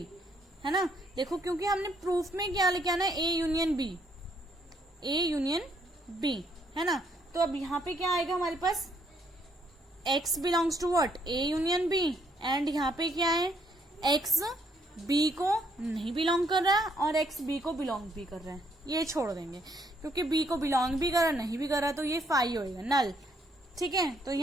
है ना। देखो क्योंकि हमने प्रूफ में क्या लेके आना है, a union b, a union b, है ना। तो अब यहाँ पे क्या आएगा हमारे पास, x belongs to what, a union b and यहाँ पे क्या है, x b को नहीं बिलोंग कर रहा है और x b को बिलोंग भी कर रहा है, ये छोड़ देंगे क्योंकि b को बिलोंग भी कर रहा नहीं भी कर रहा, तो ये फाई होएगा, नल। ठीक है, तो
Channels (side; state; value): both; normal; correlation 0.71